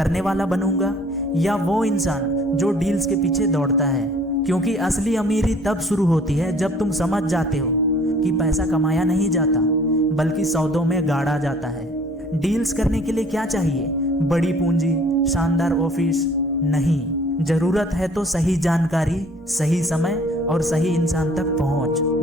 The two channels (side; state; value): both; normal; correlation 0.54